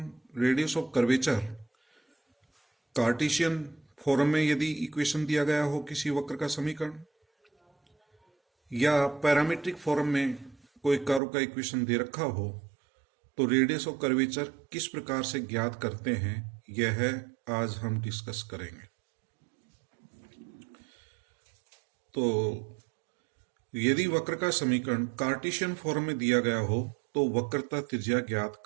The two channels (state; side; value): drops out; left; at 11.2 s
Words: radius of curvature Cartesian form में यदि इक्वेशन दिया गया हो किसी वक्र का समीकरण या पैरामीट्रिक फॉर्म में कोई कर्व का इक्वेशन दे रखा हो तो रेडियस ऑफ कर्वेचर किस प्रकार से ज्ञात करते हैं यह आज हम डिस्कस करेंगे। तो यदि वक्र का समीकरण कार्टेशियन फॉर्म में दिया गया हो तो वक्रता त्रिज्या ज्ञात